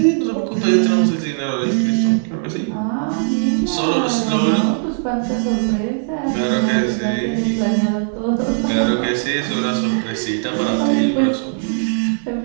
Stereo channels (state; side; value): silent; left; digital silence